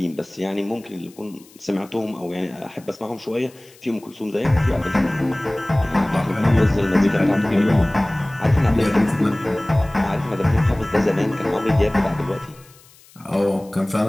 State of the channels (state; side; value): noise; left; hiss, 26 dB below the sound